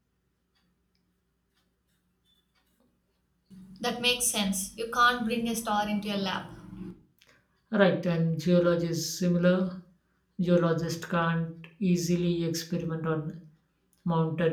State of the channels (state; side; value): identical; both; correlation 1.00